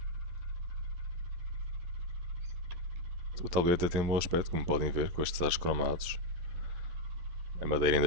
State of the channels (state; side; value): late; left; 11 ms